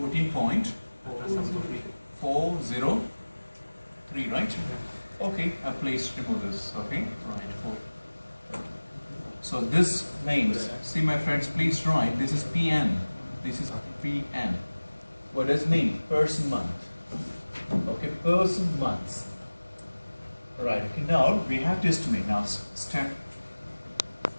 right? Okay, please remove this. Okay, right. So this means, see my friends, please write. This is PN. This is PN. What does it mean? Person month. Okay, person months. Right, okay, now we have to estimate. Now step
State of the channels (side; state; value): both; inverted; correlation -1.00